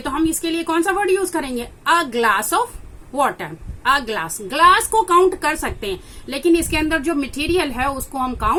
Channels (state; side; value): identical; both; correlation 1.00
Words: तो हम इसके लिए कौन सा वर्ड यूज करेंगे, a glass of water. A glass, glass को काउंट कर सकते हैं, लेकिन इसके अंदर जो मटेरियल है उसको हम